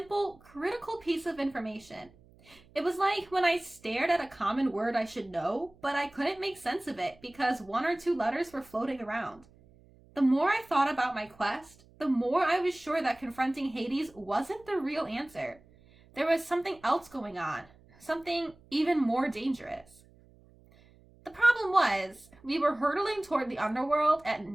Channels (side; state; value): right; noise; hum, 27 dB below the sound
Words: critical piece of information. It was like when I stared at a common word I should know, but I couldn't make sense of it because 1 or 2 letters were floating around. The more I thought about my quest, the more I was sure that confronting Hades wasn't the real answer. There was something else going on, something even more dangerous. The problem was, we were hurtling toward the underworld at